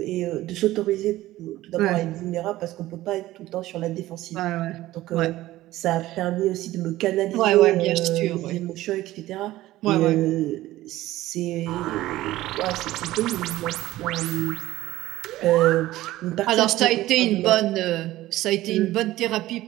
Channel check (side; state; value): left; quieter; 16.1 dB